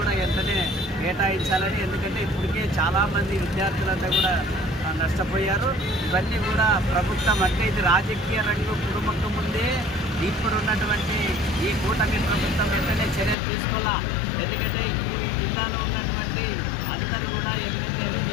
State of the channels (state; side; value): drops out; right; at 13.4 s